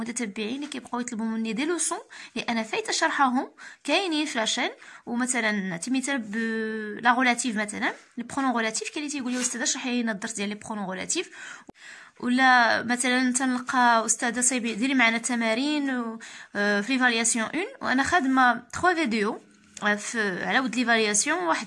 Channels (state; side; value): identical; both; correlation 1.00